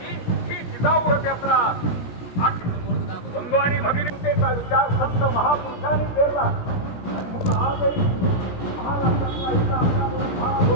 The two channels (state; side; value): late; right; 17 ms